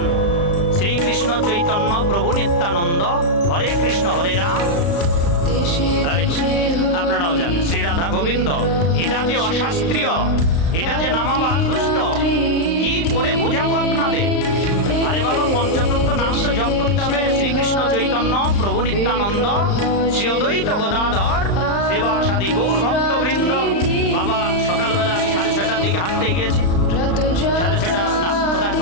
শ্রীকৃষ্ণ চৈতন্য প্রভু নিত্যানন্দ, হরে কৃষ্ণ হরে রাম। আপনারাও জানেন শ্রী রাধা গোবিন্দ। এটা যে অশাস্ত্রীয়, এটা যে নামাবাস দুষ্ট, কি করে বোঝাবো আপনাদের? আরে বাবা, পঞ্চতত্ত্ব নাম তো জপ করতে হবে। শ্রীকৃষ্ণ চৈতন্য প্রভু নিত্যানন্দ শ্রী অদ্বৈত গদাধর সেবাসাদী গৌর ভক্তবৃন্দ। বাবা সকালবেলা আমি 6:30টার দিকে হাঁটতে গিয়েছি, 6:30 না কোথায়,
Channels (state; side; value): late; right; 35 ms